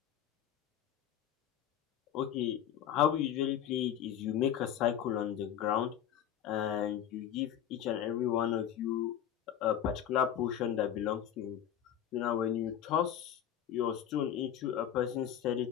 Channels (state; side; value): quieter; right; 10.0 dB